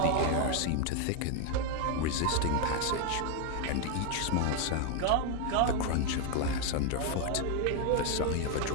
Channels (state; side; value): different; both; correlation 0.01